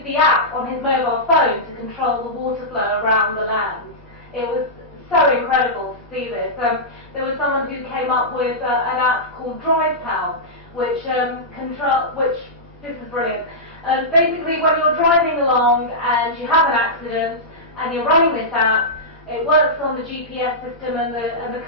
the app on his mobile phone to control the water flow around the land. It was so incredible to see this. There was someone who came up with an app called DrivePal, which this is brilliant. Basically, when you're driving along and you have an accident and you're running this app, it works on the GPS system and the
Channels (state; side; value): normal; both; correlation -0.13